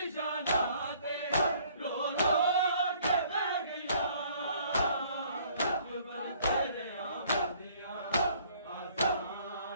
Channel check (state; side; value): inverted; both; correlation -0.59